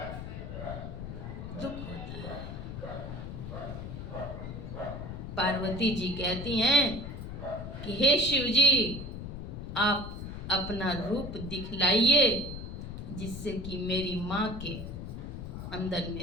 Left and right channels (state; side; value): noise; left; rumble, 8 dB below the sound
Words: दुख होता है। पार्वती जी कहती हैं कि हे शिव जी, आप अपना रूप दिखलाइए, जिससे कि मेरी माँ के अंदर